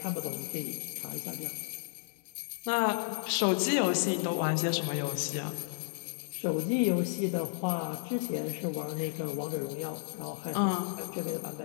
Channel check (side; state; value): right; silent; digital silence